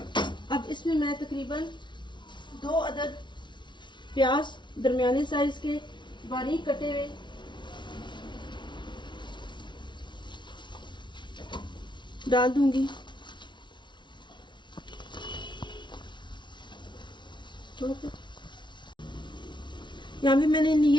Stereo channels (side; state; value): right; late; 0.23 ms